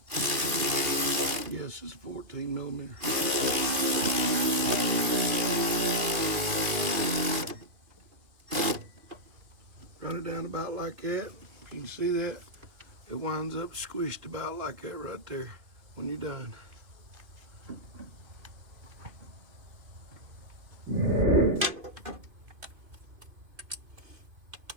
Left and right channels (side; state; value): left; late; 2.8 ms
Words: Yes, it's 14 millimeter. Run it down about like that. If you can see that, it winds up squished about like that right there when you're done.